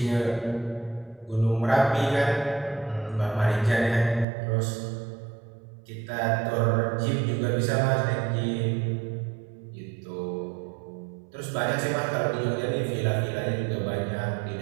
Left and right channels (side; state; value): left; drops out; at 4.2 s